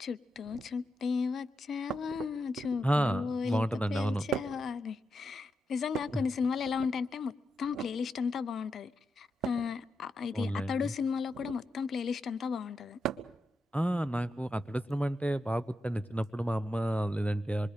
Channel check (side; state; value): both; normal; correlation 0.87